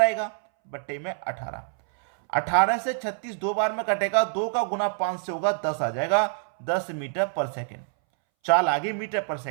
आएगा, बट्टे में 18। 18 से 36 दो बार में कटेगा, 2 का गुना 5 से होगा, 10 आ जाएगा। 10 मीटर पर सेकेंड। चाल आ गई मीटर पर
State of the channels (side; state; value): left; silent; 61 dB below the other